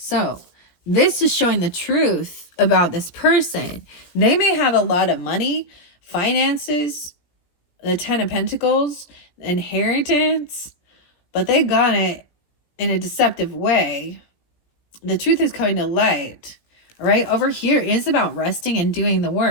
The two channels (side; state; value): right; late; 17 ms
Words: this is showing the truth about this person. They may have a lot of money, finances, the Ten of Pentacles, inheritance, but they got it in a deceptive way. The truth is coming to light. Right over here is about resting and doing the